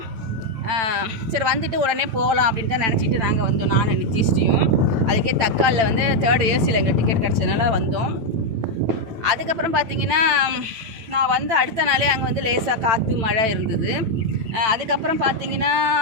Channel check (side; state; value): left; late; 9.0 ms